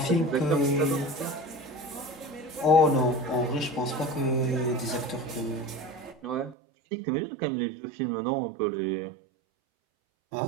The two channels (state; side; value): drops out; left; at 6.6 s